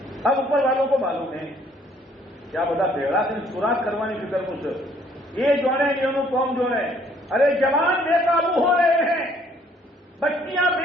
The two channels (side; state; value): both; normal; correlation 0.62